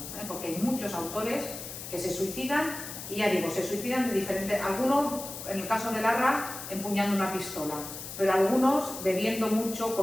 Porque hay muchos autores que se suicidan, y ya digo, se suicidan de diferentes, algunos, en el caso de Larra, empuñando una pistola, pero algunos bebiendo mucho,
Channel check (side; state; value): left; noise; hiss, 10 dB below the sound